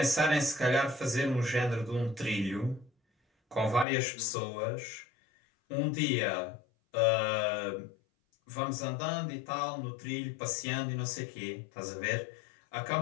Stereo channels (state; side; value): drops out; right; at 3.9 s